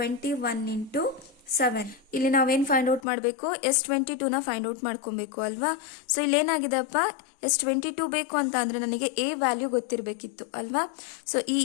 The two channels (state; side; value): drops out; right; at 3.0 s